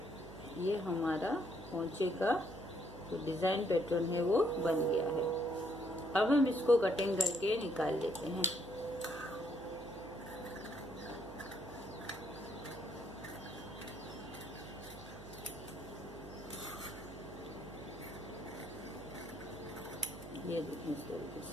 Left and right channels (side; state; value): right; noise; hum, 15 dB below the sound